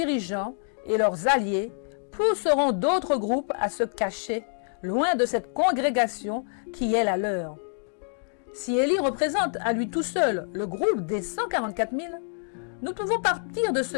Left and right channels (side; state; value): right; silent; 60 dB below the other